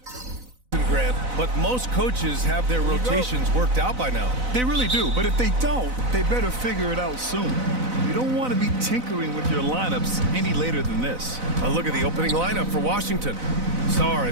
Grant, but most coaches have their rotations worked out by now. They really do, but if they don't, they better figure it out soon. You don't want to be tinkering with your lineups any later than this. A look at the opening lineup for Washington. Sarr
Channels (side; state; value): left; late; 4.0 ms